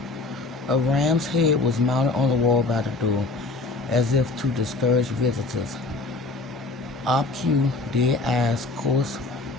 A ram's head was mounted on the wall by the door, as if to discourage visitors. Obtuse, dead eyes, coarse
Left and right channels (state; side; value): quieter; right; 3.3 dB